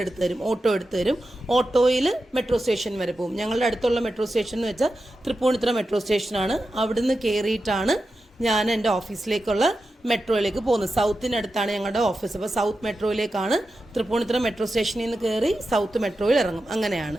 എടുത്തു തരും, ഓട്ടോ എടുത്തു തരും. ഓട്ടോയിൽ മെട്രോ സ്റ്റേഷൻ വരെ പോകും. ഞങ്ങളുടെ അടുത്തുള്ള മെട്രോ സ്റ്റേഷൻ എന്ന് വെച്ചാൽ തൃപ്പൂണിത്തുറ മെട്രോ സ്റ്റേഷനാണ്. അവിടുന്ന് കയറിയിട്ടാണ് ഞാൻ എൻ്റെ ഓഫീസിലേക്കുള്ള മെട്രോയിലേക്ക് പോകുന്നത്. സൗത്തിനടുത്താണ് ഞങ്ങളുടെ ഓഫീസ്. അപ്പോൾ സൗത്ത് മെട്രോയിലേക്കാണ്, തൃപ്പൂണിത്തുറ മെട്രോ സ്റ്റേഷനിൽ നിന്ന് കയറി സൗത്ത് മെട്രോയിൽ ഇറങ്ങും.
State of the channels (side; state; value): both; normal; correlation 0.91